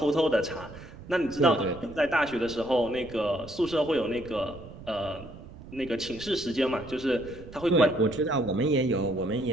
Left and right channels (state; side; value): noise; right; rumble, 16 dB below the sound